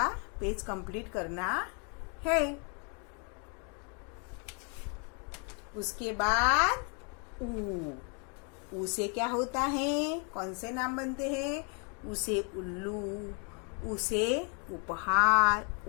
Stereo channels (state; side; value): quieter; right; 38.1 dB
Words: पेज कंप्लीट करना है। उसके बाद ऊ से क्या होता है, कौन से नाम बनते हैं, उसे उल्लू, उसे उपहार,